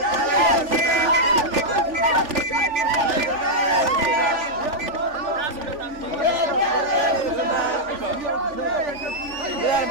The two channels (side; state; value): left; late; 3.4 ms